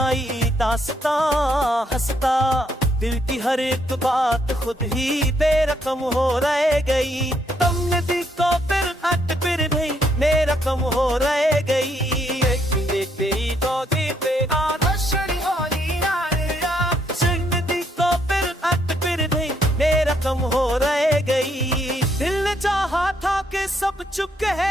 दास्तां हंसता, दिल की हर एक बात खुद ही बेरकम हो रह गई। तुमने दिल को फिर हट फिर नहीं मेरा कम हो रह गई। कम हो रह गई। दिल ने चाहा था कि सब चुप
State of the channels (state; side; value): normal; both; correlation 0.73